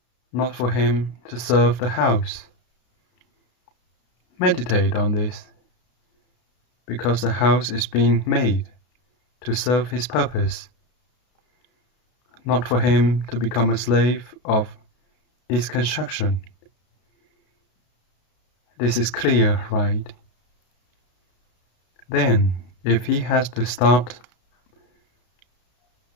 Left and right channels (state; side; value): late; right; 32 ms